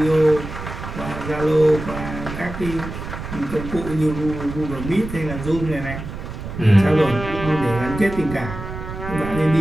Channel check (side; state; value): right; noise; rumble, 9 dB below the sound